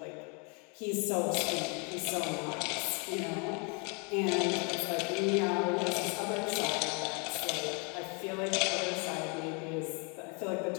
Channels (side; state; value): right; quieter; 33.5 dB